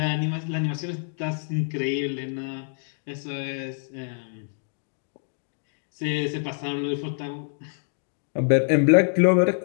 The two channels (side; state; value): right; silent; 61 dB below the other